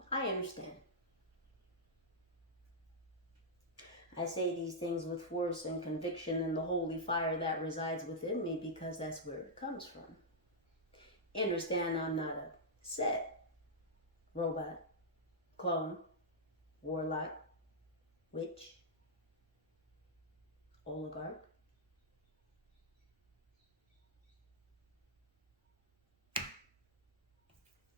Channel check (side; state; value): both; normal; correlation -0.08